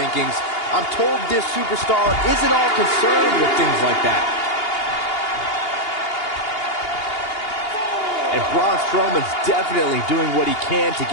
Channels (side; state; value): right; late; 2.8 ms